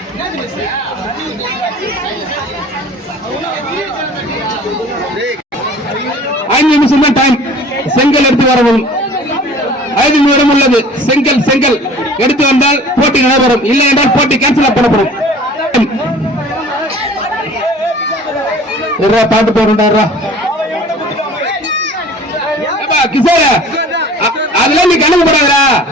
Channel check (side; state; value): both; normal; correlation 0.47